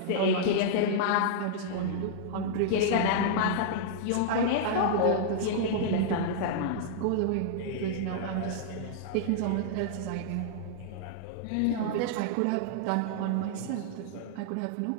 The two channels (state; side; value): different; both; correlation -0.01